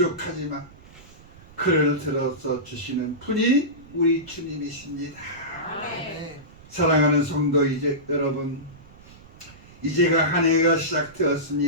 그를 들어서 주시는 분이 우리 주님이십니다. 아멘. 사랑하는 성도 여러분, 이제가 한 해가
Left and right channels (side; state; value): right; noise; rumble, 22 dB below the sound